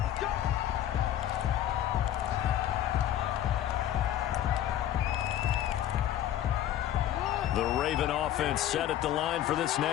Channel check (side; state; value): right; quieter; 11.6 dB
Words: The Raven offense set at the line for this